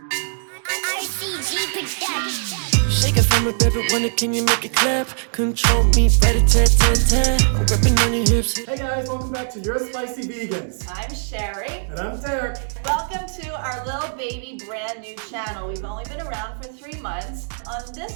it from a baby, wonder can you make it clap? Control me, rat-a-tat-tat-tat. I'm grabbing on your hips. Hey guys, welcome back to Your Spicy Vegans. I'm Sheri. And I'm Derek. Welcome to our little baby brand new channel. We've only been around for 3 months. On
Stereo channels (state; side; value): silent; left; digital silence